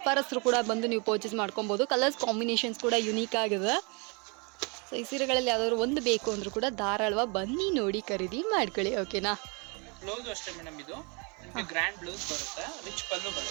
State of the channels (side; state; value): left; quieter; 32.2 dB